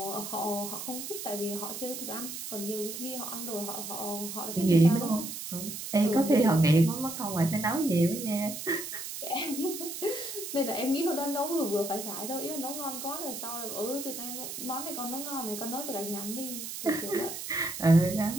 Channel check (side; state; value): right; noise; hiss, 7 dB below the sound